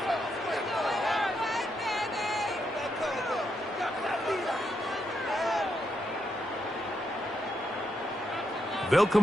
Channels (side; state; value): both; normal; correlation 0.81